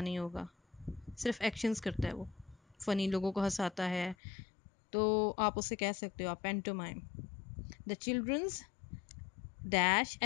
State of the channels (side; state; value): right; drops out; at 4.2 s